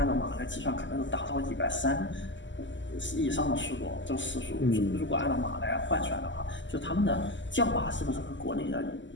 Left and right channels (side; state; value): right; late; 0.54 ms